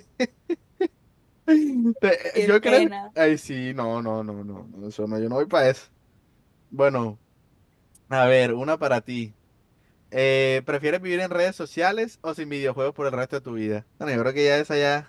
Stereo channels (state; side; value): identical; both; correlation 1.00